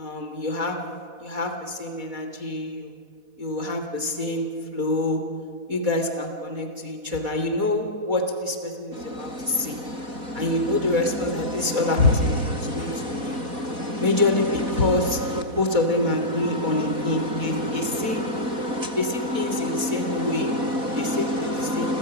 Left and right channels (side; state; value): left; late; 4.1 ms